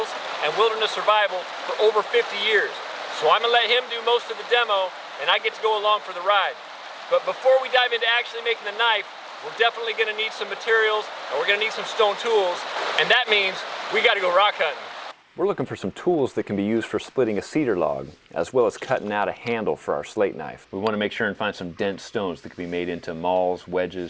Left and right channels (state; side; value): identical; both; correlation 1.00